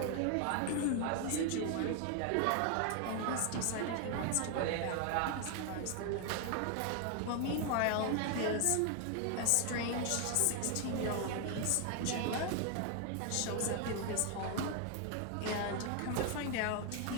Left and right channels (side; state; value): both; different; correlation 0.01